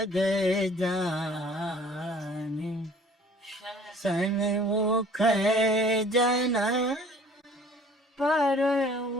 જાને સન્મુખ જન પર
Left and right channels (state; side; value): normal; both; correlation 0.52